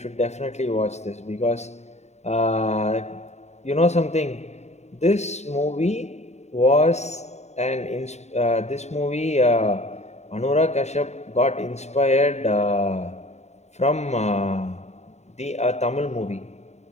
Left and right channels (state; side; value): late; right; 0.32 ms